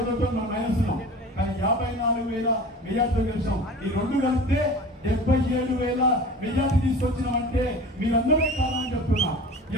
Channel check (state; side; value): normal; both; correlation 0.38